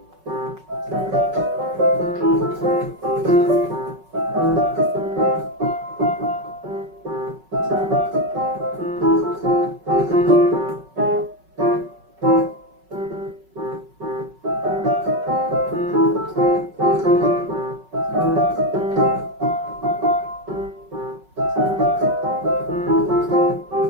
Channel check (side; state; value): left; late; 5.3 ms